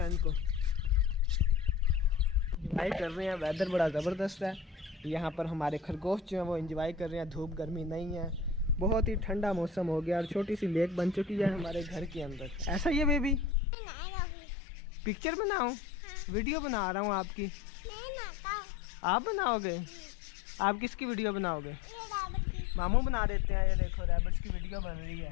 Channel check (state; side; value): drops out; right; at 13.6 s